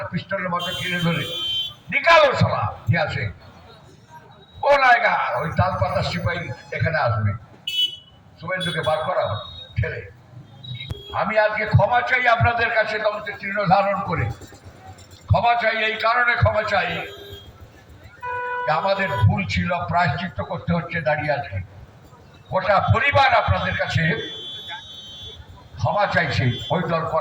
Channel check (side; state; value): both; identical; correlation 1.00